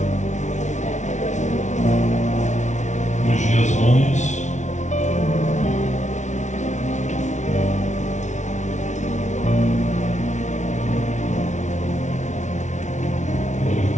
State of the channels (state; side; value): late; right; 0.35 ms